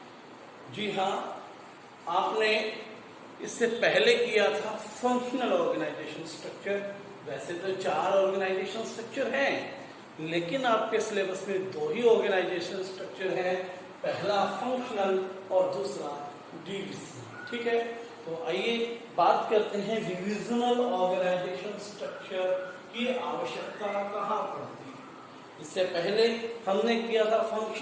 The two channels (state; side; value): identical; both; correlation 1.00